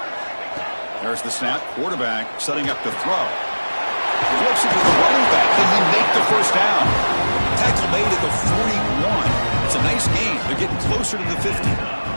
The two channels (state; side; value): inverted; both; correlation -1.00